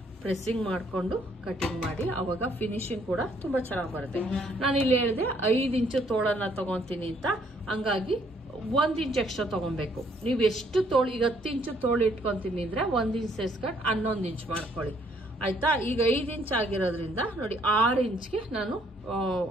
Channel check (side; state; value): both; normal; correlation 0.66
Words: ಪ್ರೆಸ್ಸಿಂಗ್ ಮಾಡ್ಕೊಂಡು ಕಟಿಂಗ್ ಮಾಡಿ, ಅವಾಗ ಫಿನಿಶಿಂಗ್ ಕೂಡ ತುಂಬಾ ಚೆನ್ನಾಗಿ ಬರುತ್ತೆ. ನಾನು ಇಲ್ಲಿ ಹೇಳಿದೆ 5 ಇಂಚು ತೋಳನ್ನ ತಗೊಂತೀನಿ ಅಂತ, ಹಂಗಾಗಿ 1 ಇಂಚ್ ಎಕ್ಸ್ಟ್ರಾ ತಗೊಬೇಕು. ನೀವು ಎಷ್ಟು ತೋಳು, ಈಗ 10 ಇಂಚು ತೋಳು ಇಟ್ಕೊಂತೀನಿ ಅಂದ್ರೆ 1 ಇಂಚ್ ಸೇರ್ಸ್ಕೊಂಡು 11 ಇಂಚ್ ಮಾಡ್ಕೊಳ್ಳಿ ಆಯ್ತಾ. ಈಗ 5 ಇಂಚ್ ಆಗಿರೋದ್ರಿಂದ ನೋಡಿ 6 ಇಂಚ್ಗೆ ನಾನು